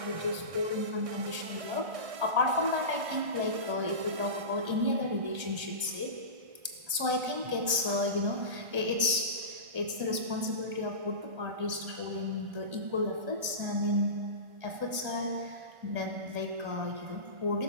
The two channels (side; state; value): left; late; 1.3 ms